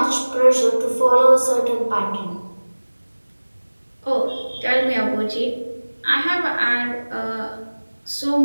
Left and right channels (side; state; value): both; inverted; correlation -1.00